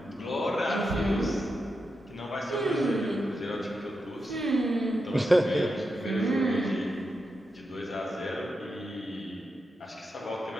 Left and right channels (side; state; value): both; normal; correlation 0.87